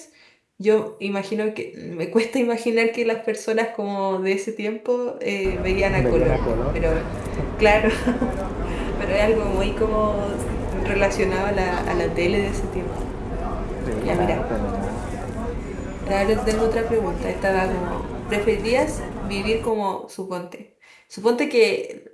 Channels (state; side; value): identical; both; correlation 1.00